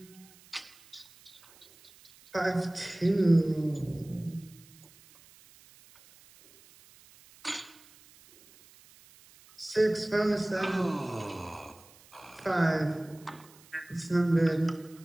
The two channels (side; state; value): right; noise; hiss, 25 dB below the sound